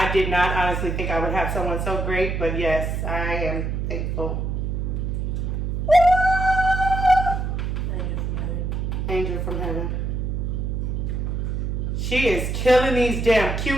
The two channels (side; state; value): right; noise; hum, 1 dB below the sound